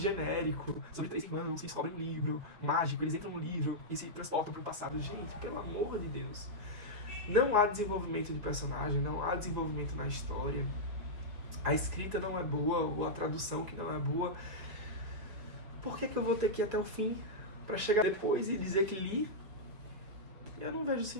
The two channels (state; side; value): late; left; 4.8 ms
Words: sobre 3 irmãos que descobrem um livro mágico, eles entram no livro e se transportam para o passado. Gente, pelo amor de Deus. Não há desenvolvimento de personagem, não há desenvolvimento na história. A escrita não é boa, ou a tradução que não é boa. Por que eu vou ter que ir até o fim para chegar depois e dizer que li? Eu não vejo